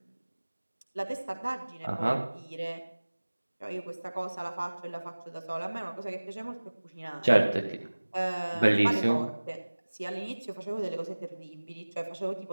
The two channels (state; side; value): inverted; both; correlation -1.00